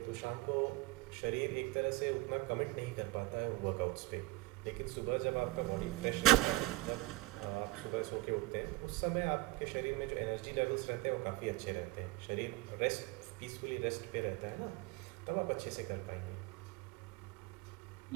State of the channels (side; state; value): left; quieter; 18.4 dB